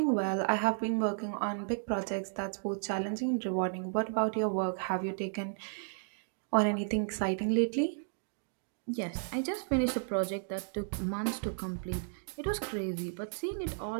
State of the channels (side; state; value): left; silent; digital silence